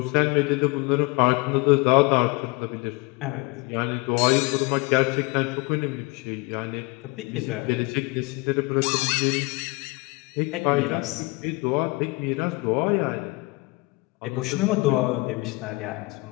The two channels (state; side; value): quieter; right; 25.5 dB